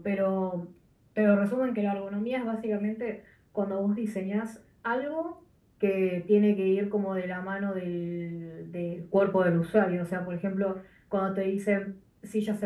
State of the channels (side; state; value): both; identical; correlation 1.00